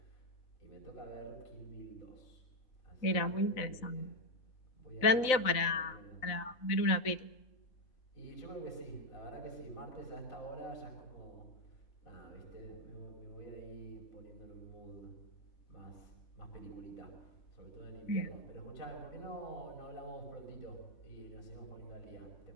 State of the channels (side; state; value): right; late; 3.9 ms